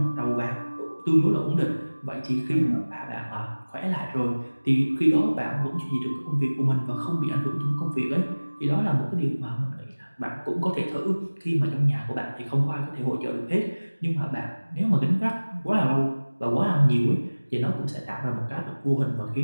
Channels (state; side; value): inverted; both; correlation -1.00